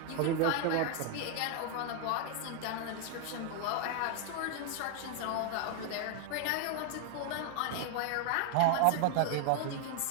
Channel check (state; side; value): different; both; correlation 0.00